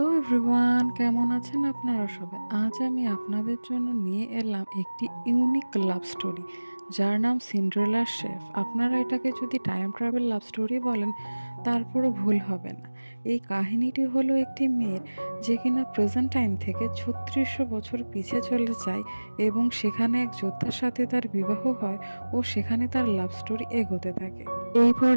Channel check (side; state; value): both; inverted; correlation -1.00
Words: everyone, কেমন আছেন আপনারা সবাই? আজ আমি আপনাদের জন্য নিয়ে এলাম একটি ইউনিক লাভ স্টোরি, যার নাম সিন্ড্রেলার শেফ। আপনারা এটাকে যদি টাইম ট্রাভেল লাভ স্টোরি বলেন, তারপরও ভুল হবে না। এই কাহিনীটি হলো একটি মেয়ের, যে কিনা প্রেজেন্ট টাইম থেকে ৩৬০০ বছর পিছিয়ে চলে যায় এবং সেখানে এক যোদ্ধার সাথে তার বিবাহ হয় ও সেখানে তার লাভ স্টোরি এগোতে থাকে। এই